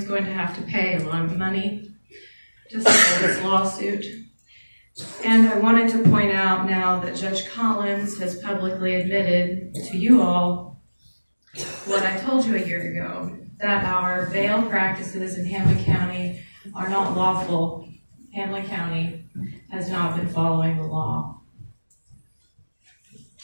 going to have to pay a lot of money to settle this lawsuit. And I wanted to point out now that Judge Collins has publicly admitted to you all what I told you a year ago, that our bail practices in Hamblen County are not lawful. Hamblen County has not been following the law.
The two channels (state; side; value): inverted; both; correlation -1.00